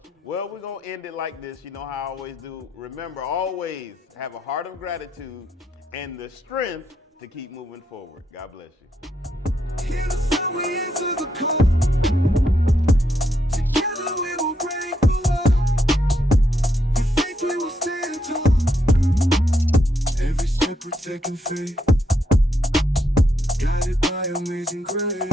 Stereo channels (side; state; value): both; normal; correlation 0.78